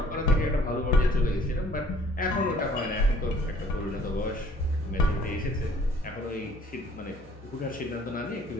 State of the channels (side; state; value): both; normal; correlation 0.57